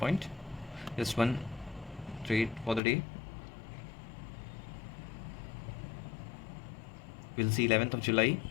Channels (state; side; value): drops out; right; at 2.8 s